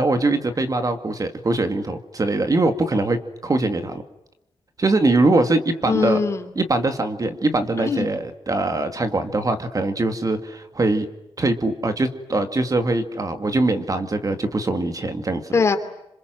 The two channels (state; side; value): normal; both; correlation 0.79